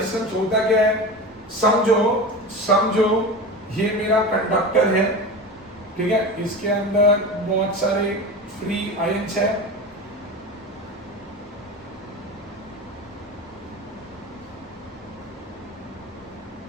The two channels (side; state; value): both; normal; correlation 0.28